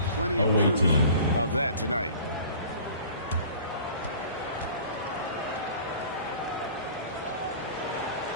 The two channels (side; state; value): both; inverted; correlation -0.45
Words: of proof of that tonight.